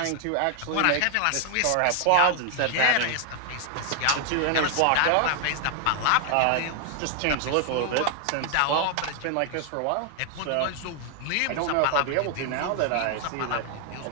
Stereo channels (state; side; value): different; both; correlation 0.00